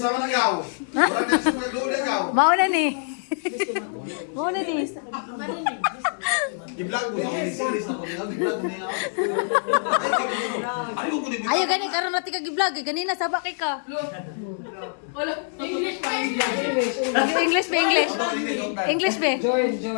man agaw? Murag na sa mga doon agaw. Mauna ni. Mauna ni. Gi-vlog mo sa series na ko. Gi-vlog mo niya. Ay, ko kunin. Ayo gani karon natin kag-vlog ganina sabak kay ka. English ba English? English ba?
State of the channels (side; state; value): right; silent; digital silence